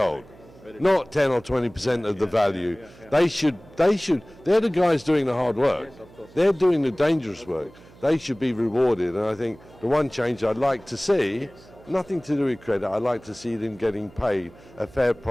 Not 10 or 20% of the value. They should, they're the guys doing the hard work. They're doing the dangerous work. They should be rewarded. And I think the one change I'd like to see, nothing to do with credit, I'd like to see them getting paid a fair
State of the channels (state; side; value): noise; right; hum, 24 dB below the sound